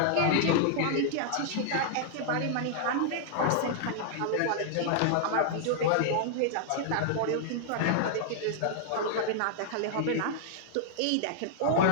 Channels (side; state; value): both; different; correlation -0.01